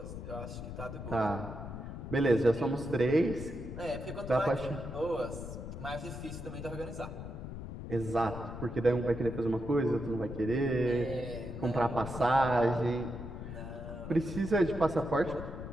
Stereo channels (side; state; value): left; noise; rumble, 9 dB below the sound